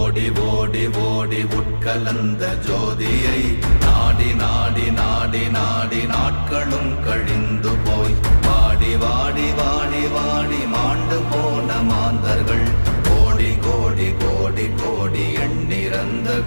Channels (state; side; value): inverted; both; correlation -1.00